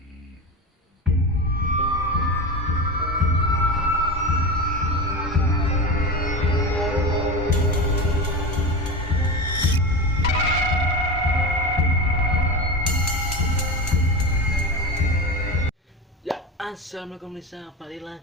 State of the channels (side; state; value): both; normal; correlation 0.24